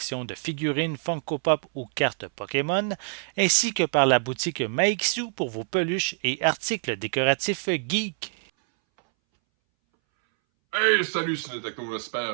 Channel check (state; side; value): silent; left; 61 dB below the other